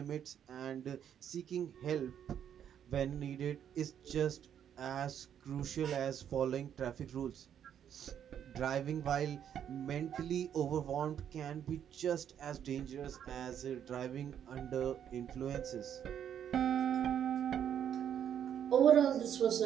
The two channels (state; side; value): quieter; left; 9.2 dB